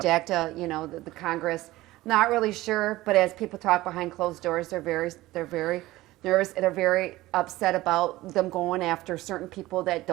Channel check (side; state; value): left; quieter; 17.6 dB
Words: the Congress. Not really sure, but as people talk behind closed doors, they're very nervous. They're very upset about them going after certain people that